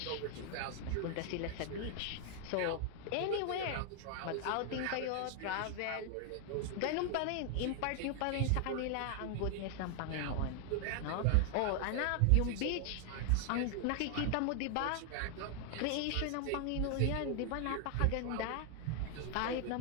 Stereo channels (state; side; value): different; both; correlation 0.00